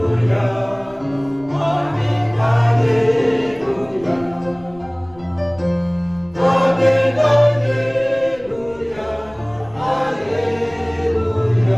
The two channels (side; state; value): left; noise; rumble, 25 dB below the sound